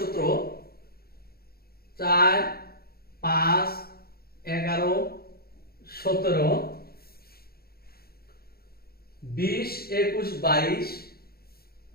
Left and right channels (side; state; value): right; late; 0.45 ms